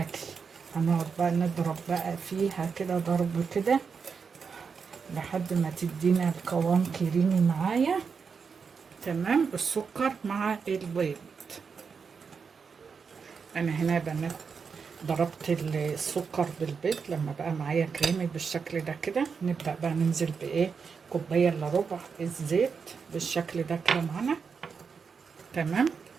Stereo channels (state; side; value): quieter; left; 5.7 dB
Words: هنقعد بقى نضرب بقى فيها كده ضرب كده لحد ما تدينا القوام كريمي معايا. تمام. السكر مع البيض. انا هنا يا بنات ضربت السكر بالبيض لما بقى معايا كريمي بالشكل ده كده. نبدأ بقى ننزل كوباية الا ربع الزيت بالشكل ده كده معانا. تمام.